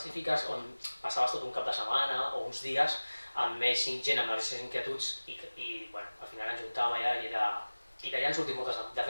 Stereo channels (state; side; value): inverted; both; correlation -1.00